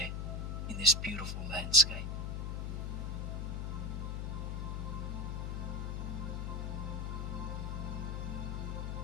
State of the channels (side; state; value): left; noise; hum, 2 dB below the sound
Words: in this beautiful landscape?